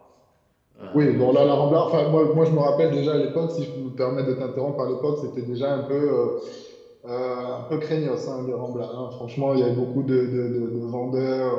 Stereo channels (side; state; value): both; identical; correlation 1.00